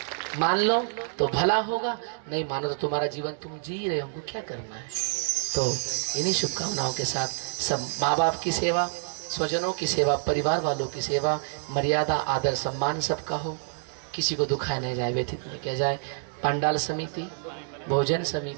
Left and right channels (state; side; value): silent; left; digital silence